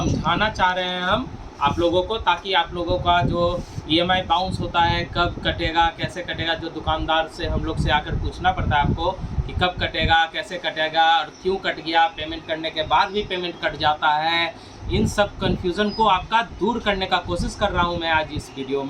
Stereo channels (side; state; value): both; identical; correlation 1.00